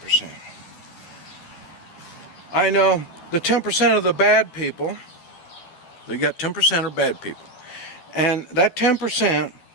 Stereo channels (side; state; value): right; late; 12 ms